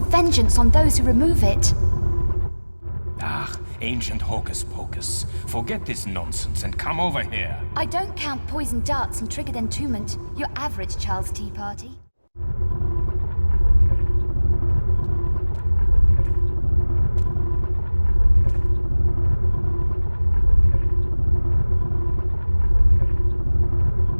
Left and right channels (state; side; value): inverted; both; correlation -1.00